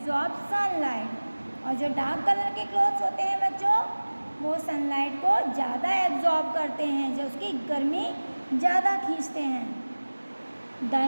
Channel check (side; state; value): both; inverted; correlation -1.00